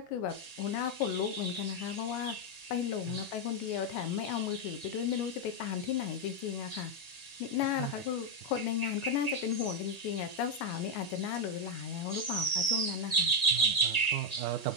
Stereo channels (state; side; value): late; right; 1.9 ms